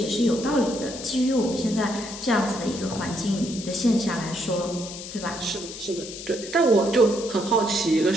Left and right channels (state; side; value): noise; left; hiss, 11 dB below the sound